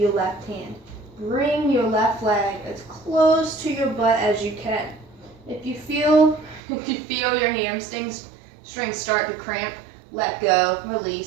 left hand. Bring your left leg as close to your butt as you can. If you feel your hamstrings start to cramp, let go,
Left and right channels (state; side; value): drops out; left; at 6.6 s